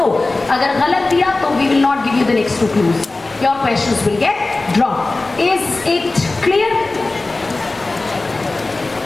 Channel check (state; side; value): quieter; right; 3.2 dB